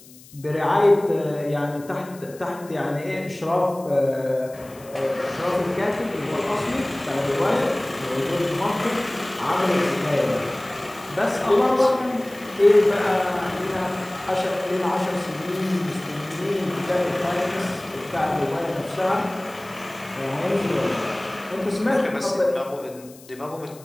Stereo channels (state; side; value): noise; left; hiss, 22 dB below the sound